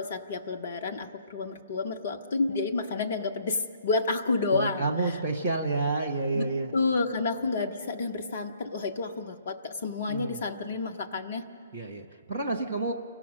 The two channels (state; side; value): inverted; both; correlation -0.62